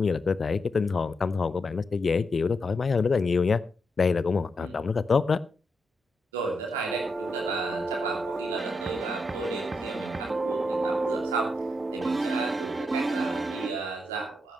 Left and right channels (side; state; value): both; normal; correlation 0.84